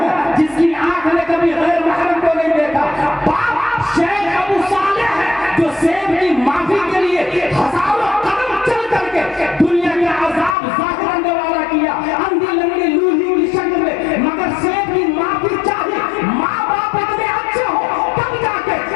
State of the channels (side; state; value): right; drops out; at 10.6 s